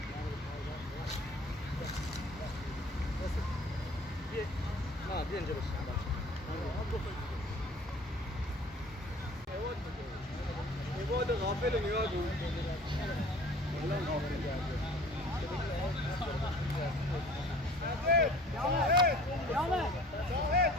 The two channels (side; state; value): both; normal; correlation 0.48